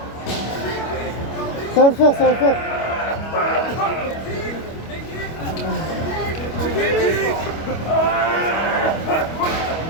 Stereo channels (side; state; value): right; late; 25 ms